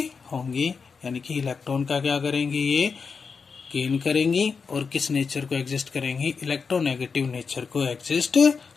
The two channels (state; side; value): quieter; right; 5.4 dB